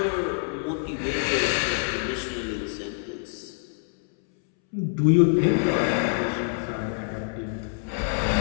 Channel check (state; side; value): silent; right; 61 dB below the other